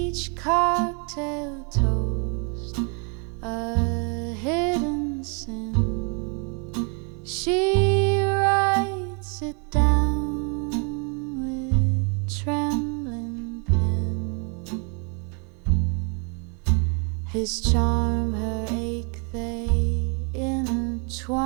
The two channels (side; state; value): left; quieter; 37.3 dB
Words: cocktail toast a hidden sin. She writes it down with trembling pen. His charm, her ache, they